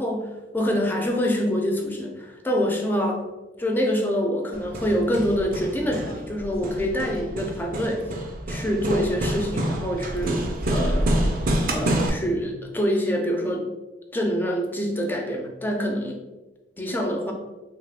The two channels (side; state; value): both; normal; correlation 0.69